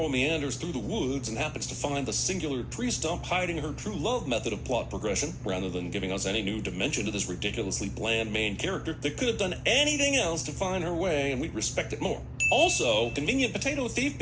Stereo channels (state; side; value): identical; both; correlation 1.00